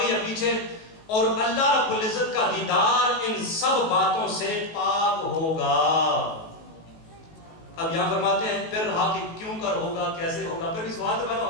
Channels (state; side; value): late; right; 19 ms